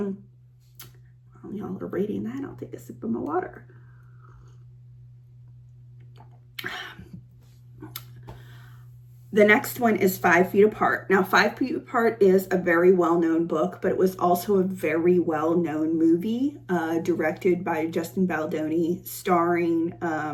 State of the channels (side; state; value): both; identical; correlation 1.00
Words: While y'all are reading that, I'll take a sip of my water. The next one is 5 Feet Apart. Now, 5 Feet Apart is a very well-known book, but it was also a very well-known movie, directed by Justin Baldoni, starring,